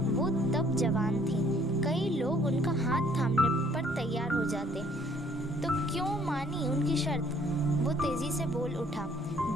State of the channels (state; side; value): normal; both; correlation 0.61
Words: वो तब जवान थी, कई लोग उनका हाथ थामने पर तैयार हो जाते, तो क्यों मानी उनकी शर्त? वो तेजी से बोल उठा।